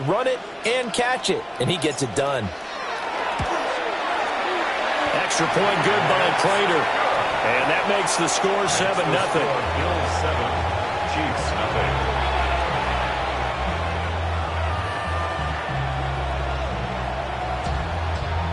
run it, and catch it. And he gets it done. Extra point good by Prater. And that makes the score 7-0. Bills 7, Chiefs nothing.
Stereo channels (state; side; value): identical; both; correlation 1.00